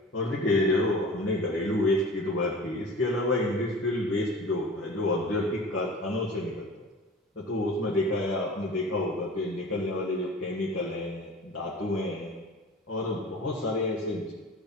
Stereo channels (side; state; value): both; normal; correlation 0.39